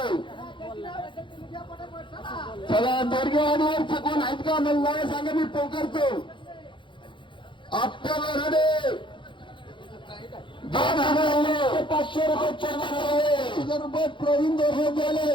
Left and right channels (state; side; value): late; right; 0.24 ms